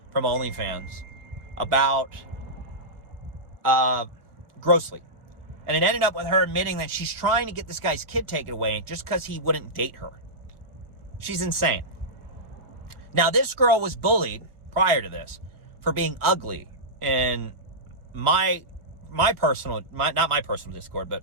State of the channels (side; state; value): left; late; 1.6 ms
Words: from OnlyFans about Grossly. And it ended up with her admitting that she's trying to get this guy's kid taken away just because he wouldn't date her. She's insane. Now, this girl was bullied prior to this for being ugly in not my personal Discord, but